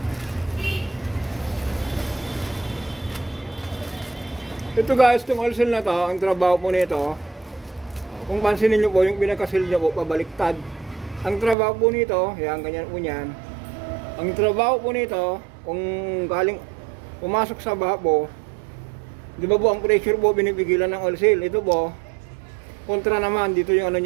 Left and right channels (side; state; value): left; drops out; at 11.6 s